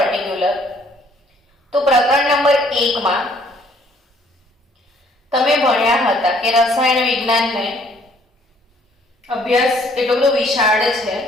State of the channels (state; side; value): normal; both; correlation 0.62